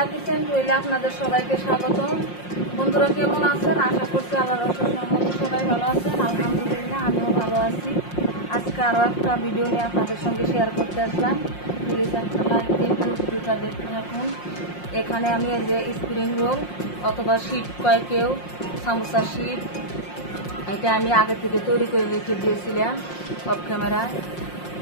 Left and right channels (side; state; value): right; late; 5.6 ms